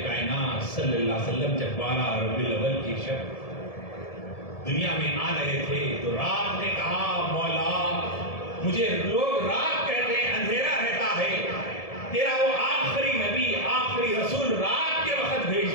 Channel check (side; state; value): right; late; 1.7 ms